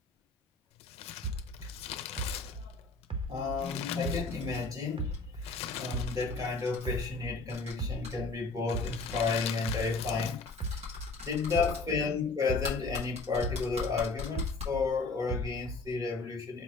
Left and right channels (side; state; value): right; quieter; 3.6 dB